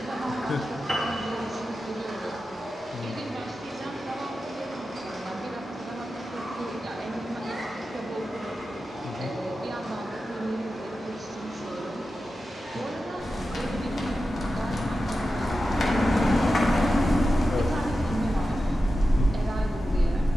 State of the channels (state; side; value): normal; both; correlation 0.92